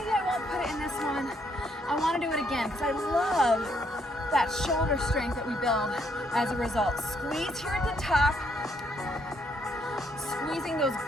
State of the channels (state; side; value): normal; both; correlation 0.72